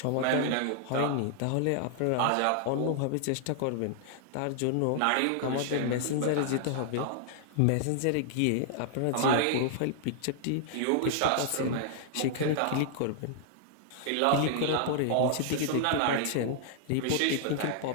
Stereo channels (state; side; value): different; both; correlation -0.01